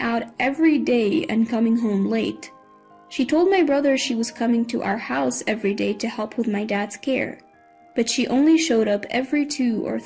every day and coming home late. She told my brother she was coming to our house every day to help with my dad's care, but she only showed up every 2 or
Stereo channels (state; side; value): identical; both; correlation 1.00